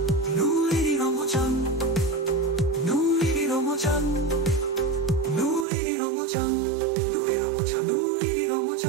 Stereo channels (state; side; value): drops out; left; at 5.7 s